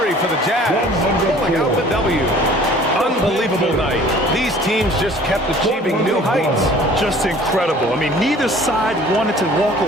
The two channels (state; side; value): normal; both; correlation 0.50